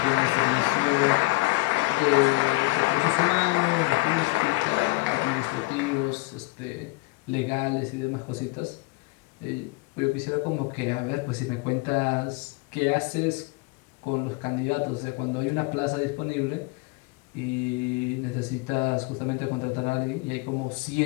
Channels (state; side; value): quieter; right; 23.7 dB